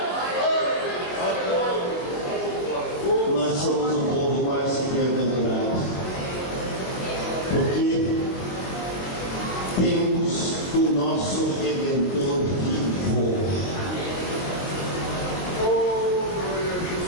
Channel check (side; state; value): right; late; 23 ms